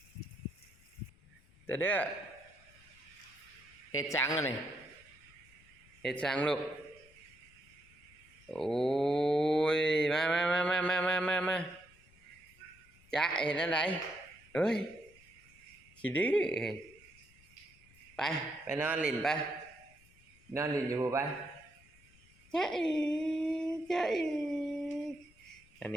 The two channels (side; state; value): left; noise; rumble, 27 dB below the sound